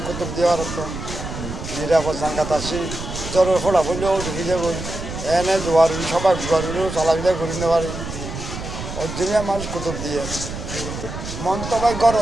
কুতুব দেওয়ার তো নিরাপদ জাঙ্গাত আসি জ্বরের ফোড়া ফুলেও ঢুকে যাবো এনে জোয়ারি সবাই জোয়ারিও চলাফেরা করে নিতে পারি অরিজিনাল মানুষ কুতুব দিয়ে মন তো ভাই গড়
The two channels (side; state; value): right; noise; rumble, 8 dB below the sound